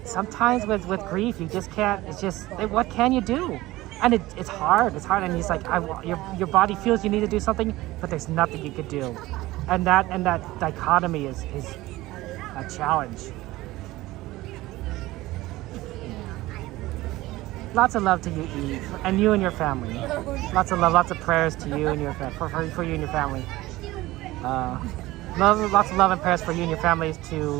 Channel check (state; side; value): quieter; left; 18.2 dB